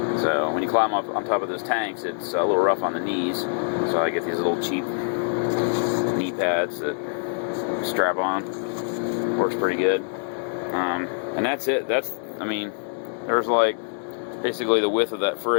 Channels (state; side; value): silent; right; 60 dB below the other